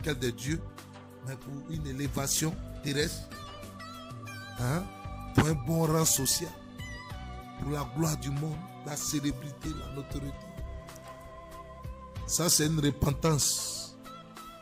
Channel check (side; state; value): both; identical; correlation 1.00